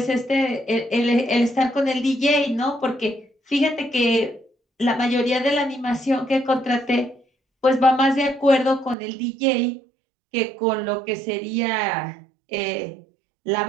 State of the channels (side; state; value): left; drops out; at 9.0 s